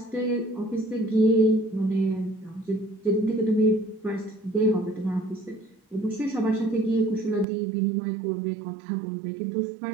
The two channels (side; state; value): left; drops out; at 7.5 s